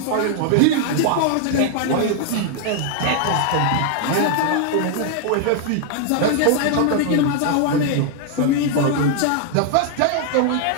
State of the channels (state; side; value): different; both; correlation 0.00